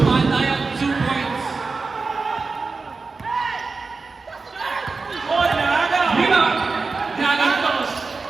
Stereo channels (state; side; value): quieter; left; 4.2 dB